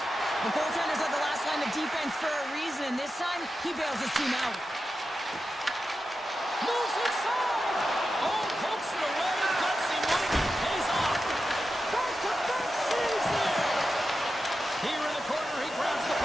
The goaltenders are the last line of defense for a reason. This time, he bails his team out. Moves inside. Oh, pokes it away. Gutsy one. Pays off. Back-to-back saves there. Here in the corner, he grabs the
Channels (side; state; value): both; normal; correlation 0.91